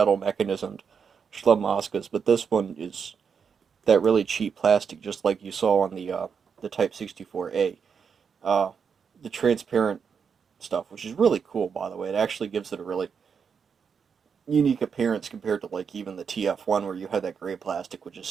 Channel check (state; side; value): quieter; left; 6.4 dB